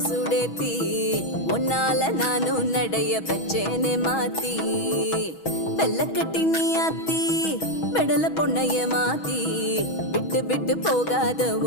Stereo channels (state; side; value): late; right; 6.2 ms